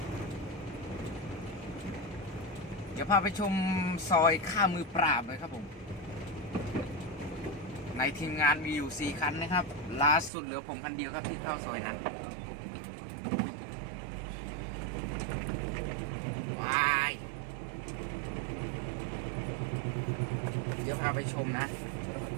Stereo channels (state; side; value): drops out; left; at 10.3 s